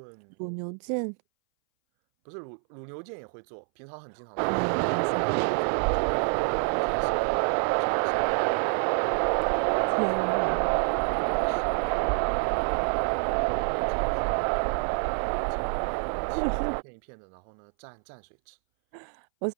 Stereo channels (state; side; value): silent; left; 60 dB below the other